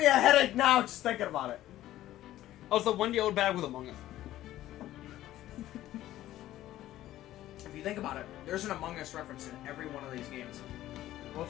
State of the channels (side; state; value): right; quieter; 14.1 dB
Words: a headache now just thinking about it. Also, Wendy old bag with Among Us. If you think about it, there's an Among Us reference in every one of these games. What's